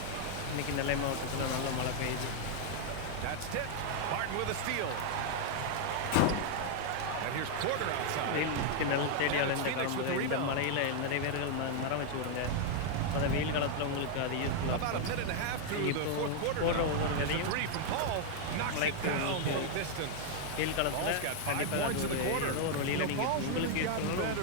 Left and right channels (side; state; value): both; different; correlation 0.00